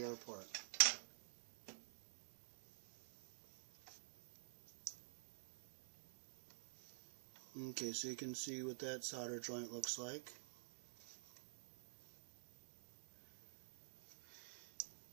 Okay, so you can see what that solder joint looks like.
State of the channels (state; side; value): silent; left; digital silence